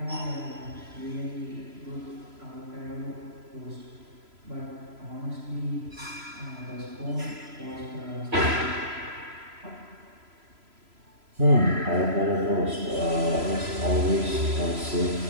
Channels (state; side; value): late; left; 3.0 ms